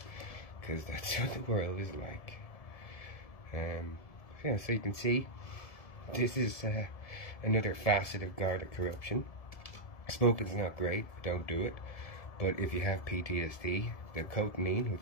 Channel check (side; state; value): right; late; 1.7 ms